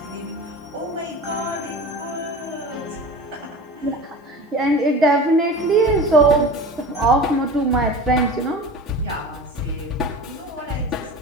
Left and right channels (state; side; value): normal; both; correlation 0.34